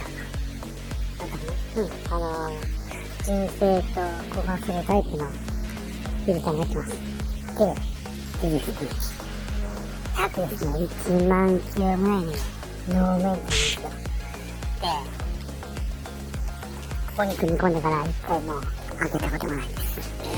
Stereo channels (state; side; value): identical; both; correlation 1.00